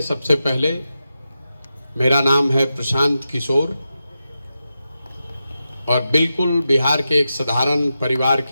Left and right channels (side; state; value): both; inverted; correlation -0.90